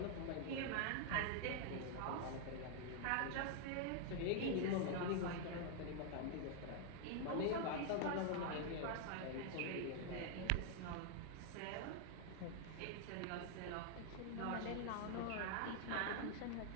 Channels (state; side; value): different; both; correlation 0.00